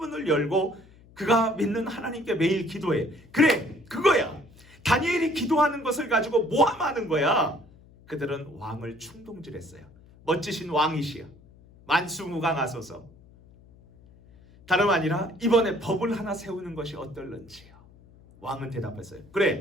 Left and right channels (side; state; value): left; noise; hum, 25 dB below the sound